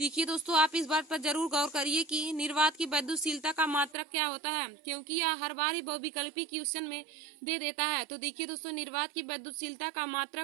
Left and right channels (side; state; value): left; drops out; at 4.0 s